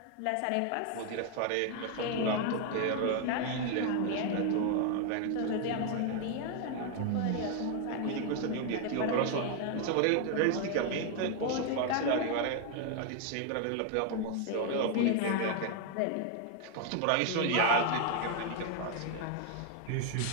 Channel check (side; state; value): both; different; correlation 0.00